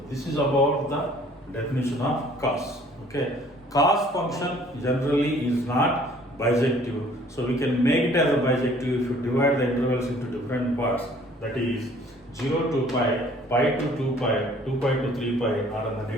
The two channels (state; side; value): normal; both; correlation 0.55